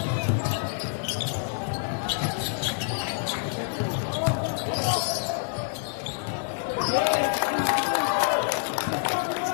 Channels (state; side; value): silent; right; digital silence